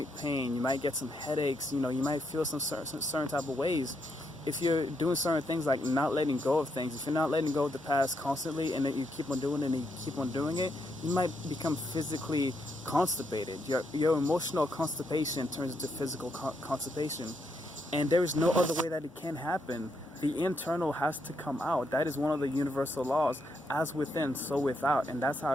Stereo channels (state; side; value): normal; both; correlation 0.78